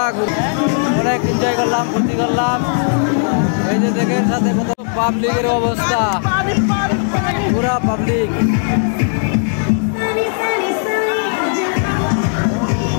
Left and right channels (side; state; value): right; silent; 58 dB below the other